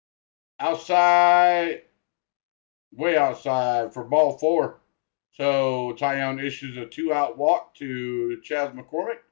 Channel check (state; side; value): silent; right; digital silence